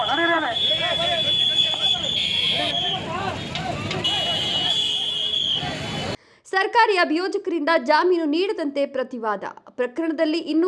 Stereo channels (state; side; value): identical; both; correlation 1.00